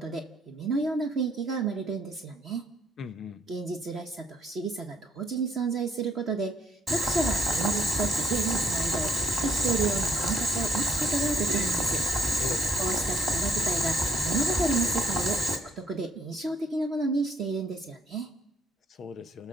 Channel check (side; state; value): both; normal; correlation 0.65